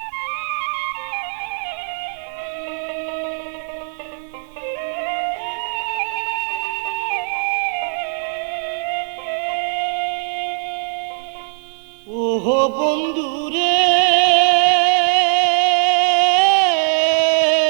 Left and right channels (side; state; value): left; silent; digital silence